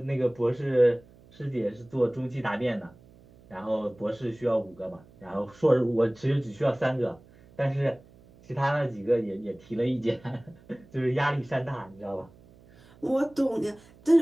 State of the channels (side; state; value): right; noise; hum, 25 dB below the sound